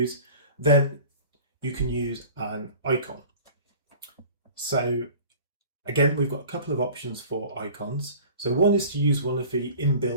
then you can use an icon. So again, we've got a couple of options for icons. So one is to use one of the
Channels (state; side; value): inverted; both; correlation -0.43